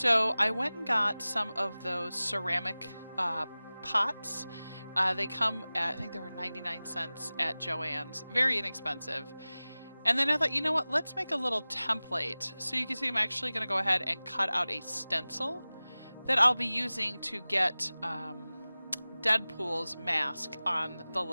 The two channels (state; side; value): inverted; both; correlation -0.98